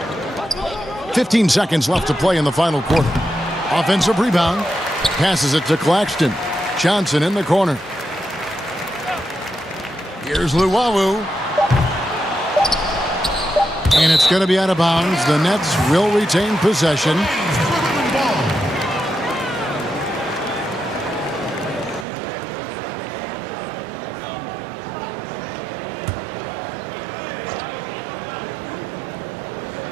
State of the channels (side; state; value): left; drops out; at 22.1 s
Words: .15 seconds left to play in the final quarter. Offensive rebound. Passes it to Claxton. Johnson in the corner. Here's Luwawu. And it's going to be out of bounds. The Nets will retain possession.